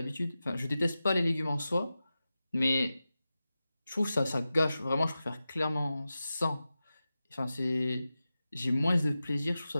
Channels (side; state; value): both; inverted; correlation -0.94